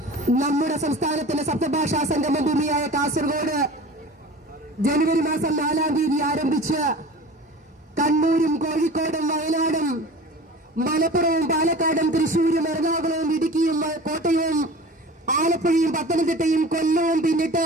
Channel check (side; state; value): both; normal; correlation 0.39